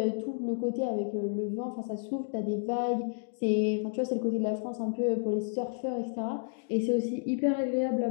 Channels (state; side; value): silent; right; digital silence